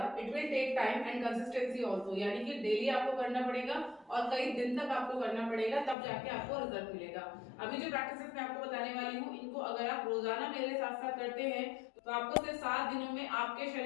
It will take time and consistency also, यानी कि डेली आपको करना पड़ेगा और कई दिन तक आपको करना पड़ेगा, तब जाके आपको रिजल्ट मिलेगा। अभी जो प्रैक्टिसेस मैं आपको बताने वाली हूँ, इनको अगर आप रोजाना मेरे साथ साथ करते हैं तो आपको सिर्फ 7 दिनों में आपके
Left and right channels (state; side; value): drops out; right; at 6.0 s